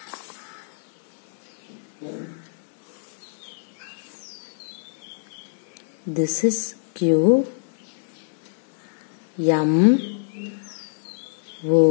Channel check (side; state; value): right; silent; digital silence